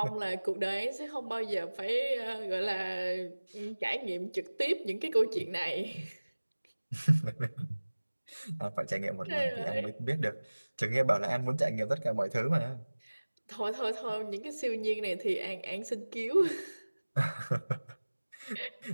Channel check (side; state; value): both; inverted; correlation -1.00